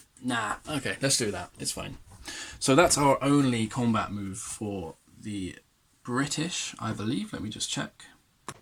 Nah, okay, let's do that. It's fine. So that's our only combat move for the British, I believe. Let me just check.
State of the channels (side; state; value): both; identical; correlation 1.00